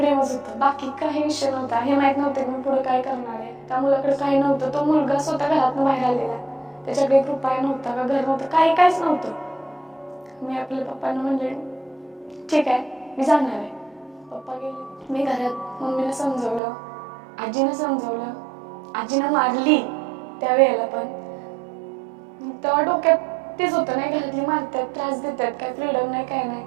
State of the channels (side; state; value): left; drops out; at 16.6 s